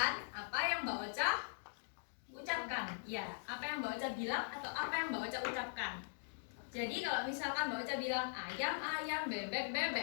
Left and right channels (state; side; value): silent; right; digital silence